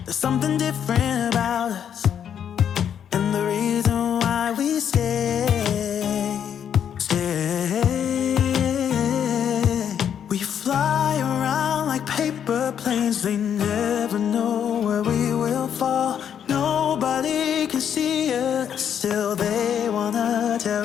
There's something different about us, and the reason why we stay. We fly around like paper planes, they never know where we will fall. Nobody can see us, still they wanna tear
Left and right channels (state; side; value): quieter; right; 8.7 dB